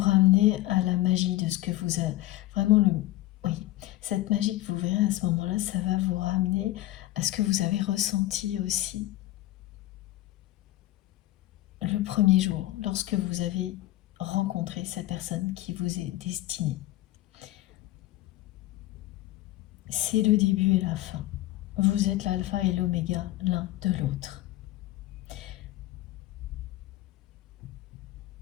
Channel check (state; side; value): quieter; right; 16.3 dB